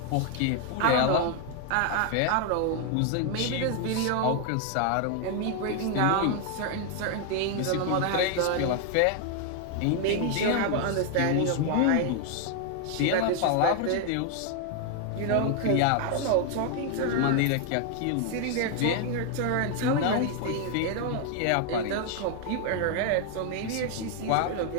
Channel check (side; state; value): both; different; correlation 0.00